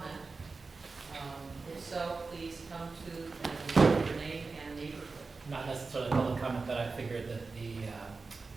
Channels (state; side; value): quieter; left; 4.1 dB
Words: If so, please come to and give your name and neighborhood. Not necessarily public comment, but I figured that the